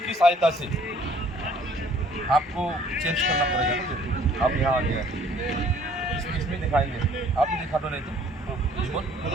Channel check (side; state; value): both; normal; correlation 0.57